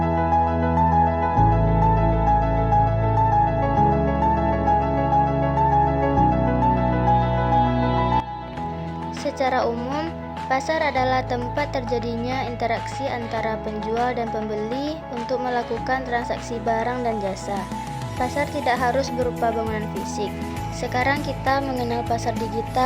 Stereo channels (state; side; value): identical; both; correlation 1.00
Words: Secara umum, pasar adalah tempat terjadinya interaksi antara penjual dan pembeli untuk melakukan transaksi barang dan jasa. Pasar tidak harus berupa bangunan fisik. Sekarang kita mengenal pasar